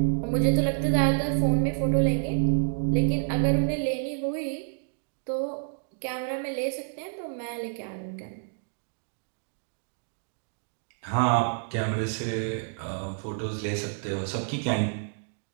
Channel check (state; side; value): silent; left; digital silence